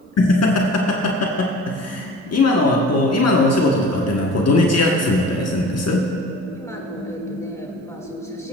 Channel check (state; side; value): normal; both; correlation 0.43